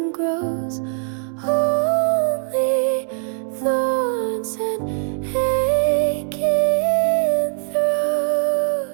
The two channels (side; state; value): left; silent; digital silence